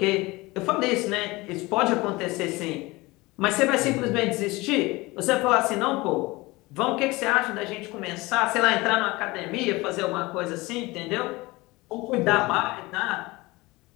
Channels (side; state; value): right; quieter; 22.0 dB